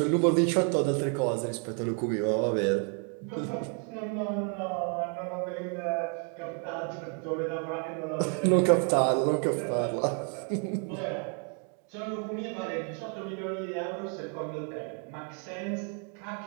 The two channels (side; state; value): left; quieter; 39.1 dB